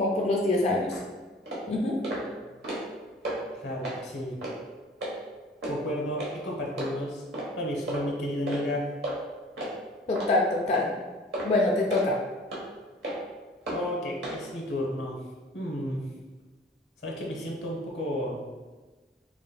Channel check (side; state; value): both; normal; correlation 0.47